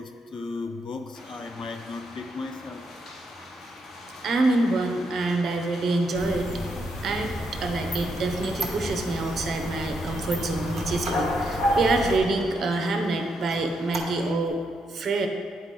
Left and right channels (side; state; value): both; normal; correlation 0.79